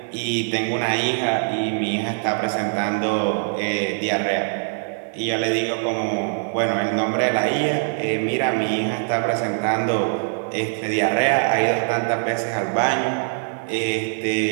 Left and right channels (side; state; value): left; silent; digital silence